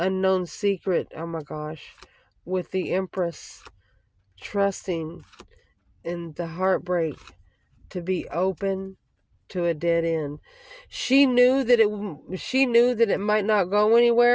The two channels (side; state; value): both; identical; correlation 1.00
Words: secret. Oh my gosh. With the Empress trusting in the heartbreak to be open to a dead end. She knew that it might not go